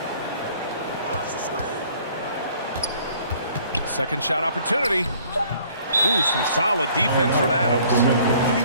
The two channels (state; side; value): inverted; both; correlation -0.57